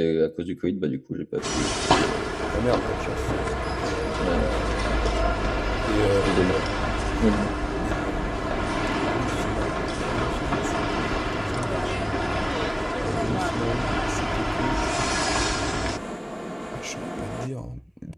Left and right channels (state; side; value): identical; both; correlation 1.00